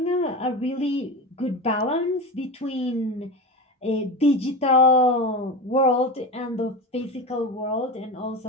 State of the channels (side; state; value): both; normal; correlation 0.24